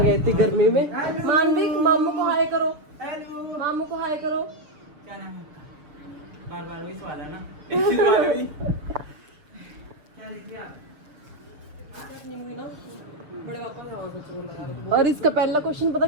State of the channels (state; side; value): late; left; 6.8 ms